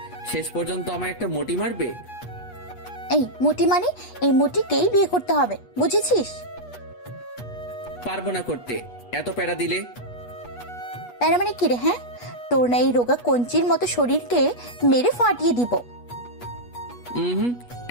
শেষ পর্যন্ত আমার একটা মোটি মারবে? এই মুটি মানে, এই মুটিকেই বিয়ে করতে হবে, বুঝেছিস? পারবো না করতে, এত প্যারা দিলে। তার মানে কি রে? হ্যাঁ, তোর না এই রোগা কঞ্চির মতো শরীরকে মেরে ফাটিয়ে দিব। হুম,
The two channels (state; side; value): late; right; 8.3 ms